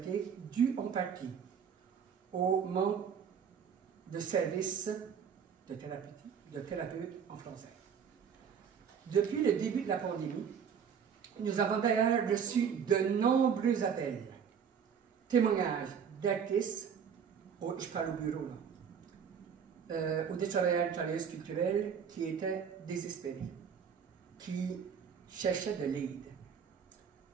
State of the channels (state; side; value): quieter; left; 7.3 dB